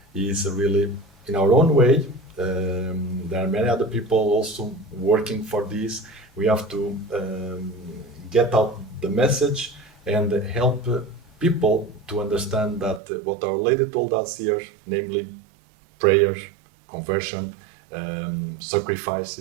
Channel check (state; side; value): drops out; left; at 13.0 s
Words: is really in our own way. There are many other people also working for this. We have to get out the message and help people to understand that what Our Lady told us here, namely prayer, conversion,